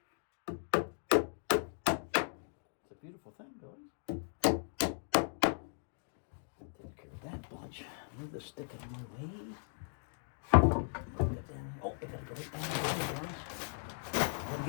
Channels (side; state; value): right; silent; 53 dB below the other